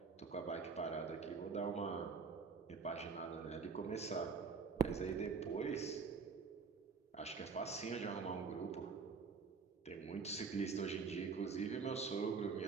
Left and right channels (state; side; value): quieter; left; 5.2 dB